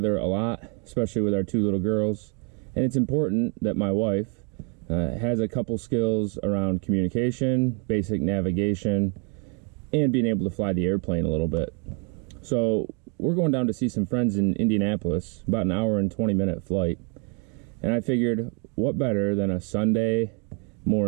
a lot, especially with our two little girls, and it's important that my wife has a couple skills around communication, basic navigation, and being able to fly the airplane a little bit. So we're going down to see some friends in Indianapolis, about an hour and 20-minute flight, and I figured what better than a Sunday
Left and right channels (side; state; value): left; quieter; 37.1 dB